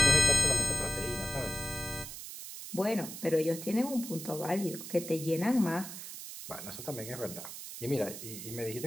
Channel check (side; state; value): right; noise; hiss, 10 dB below the sound